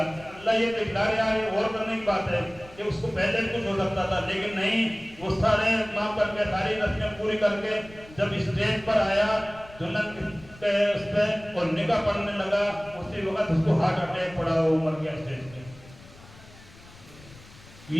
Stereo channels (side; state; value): left; noise; rumble, 21 dB below the sound